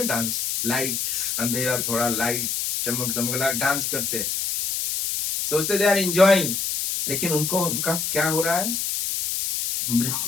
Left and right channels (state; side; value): noise; left; hiss, 1 dB below the sound